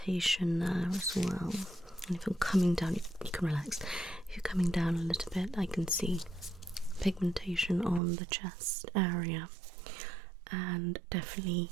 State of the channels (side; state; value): left; drops out; at 8.0 s